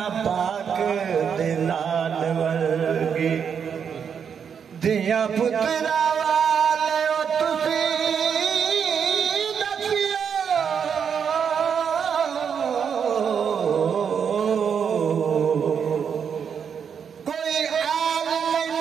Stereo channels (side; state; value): left; quieter; 7.2 dB